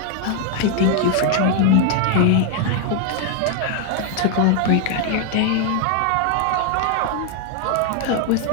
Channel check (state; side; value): different; both; correlation 0.01